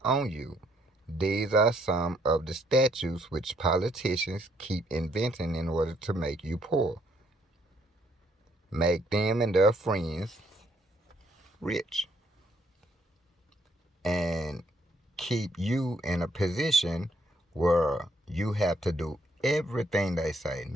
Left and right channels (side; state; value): both; normal; correlation 0.69